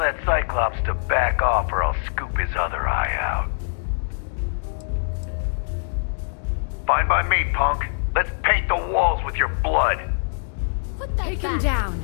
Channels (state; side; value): silent; right; digital silence